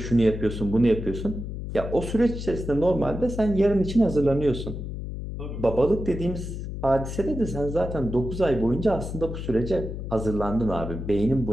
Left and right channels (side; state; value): left; noise; hum, 6 dB below the sound